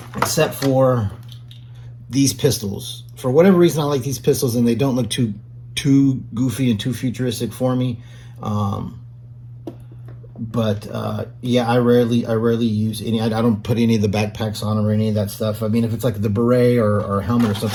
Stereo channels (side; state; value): both; identical; correlation 1.00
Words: except for these pistols. For whatever reason, I like these pistols, and they don't look too goofy and too futuristic for me. Yeah, I rarely use any. I don't put any of the backpacks on them or any of that stuff. I mean, if it's like the beret or helmet or